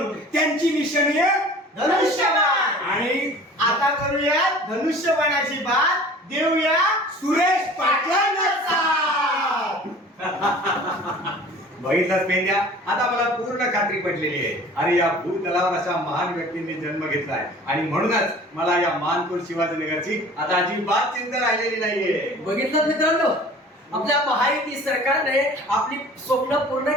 त्यांची निशाणी आहे धनुष्यबाण. आणि आता करूया धनुष्यबाणाची बात, देऊया सुरेश पाटलांना साथ. बघितलंच पेंड्या, आता मला पूर्ण खात्री पटलेली आहे. अरे या भूतलावर अशा महान व्यक्तींनी जन्म घेतलाय आणि म्हणूनच मला या मानखुर्द शिवाजीनगरची आता अजिबात चिंता राहिलेली नाहीये. बघितलं मित्रांनो, आपल्या महायुती सरकारने आपली स्वप्न पूर्ण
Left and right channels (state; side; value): normal; both; correlation 0.45